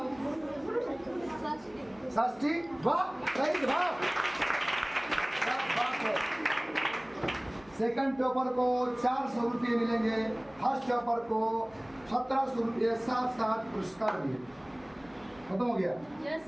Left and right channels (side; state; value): left; noise; hum, 28 dB below the sound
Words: षष्ठी। वाह सही जवाब। सेकंड टॉपर को 400 रुपये मिलेंगे, फर्स्ट टॉपर को 1700 रुपये साथ साथ पुरस्कार भी। खत्म हो गया।